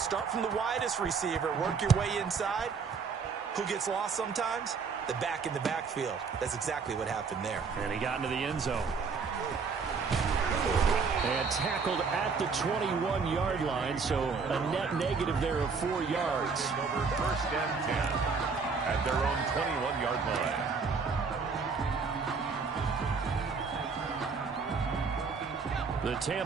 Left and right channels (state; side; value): quieter; left; 5.2 dB